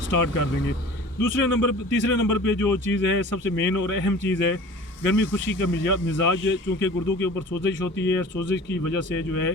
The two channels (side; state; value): both; normal; correlation 0.42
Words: स्टार्ट कर देंगे। तीसरे नंबर पे जो चीज़ है, सबसे मेन और अहम चीज़ है, गर्मी खुशी का मिजाज। चूँकि गुर्दों के ऊपर सोजिश होती है, सोजिश की वजह से जो है